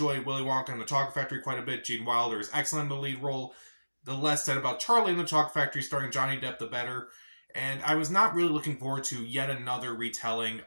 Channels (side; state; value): both; inverted; correlation -1.00